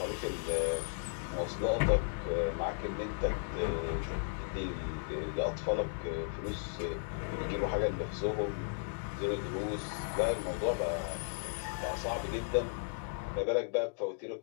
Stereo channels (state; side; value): silent; right; digital silence